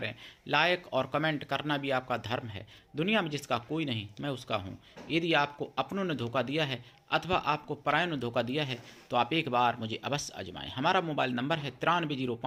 लाइक और कमेंट करना भी आपका धर्म है। दुनिया में जिसका कोई नहीं, मैं उसका हूँ। यदि आपको अपनों ने धोखा दिया है अथवा आपको परायों ने धोखा दिया है तो आप एक बार मुझे अवश्य आजमाएं। हमारा मोबाइल नंबर है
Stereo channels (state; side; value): identical; both; correlation 1.00